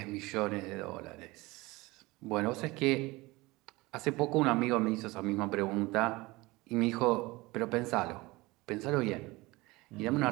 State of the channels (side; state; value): left; quieter; 21.8 dB